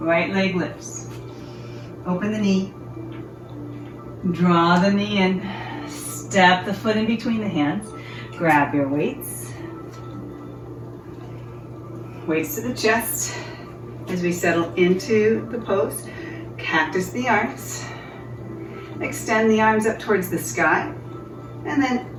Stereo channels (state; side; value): identical; both; correlation 1.00